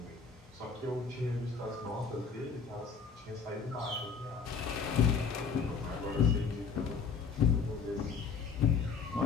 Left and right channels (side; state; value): right; quieter; 5.7 dB